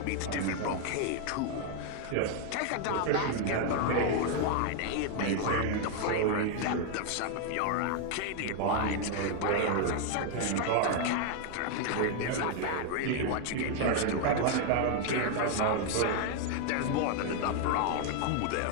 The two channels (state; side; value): different; both; correlation 0.00